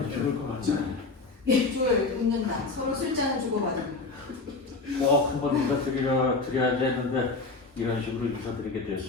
죽을 것 같네. 둘 웃는다. 서로 술잔을 주고받는다. 한번 인사드려야지 했는데 이런 식으로 인사드리게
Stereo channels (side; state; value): right; quieter; 3.8 dB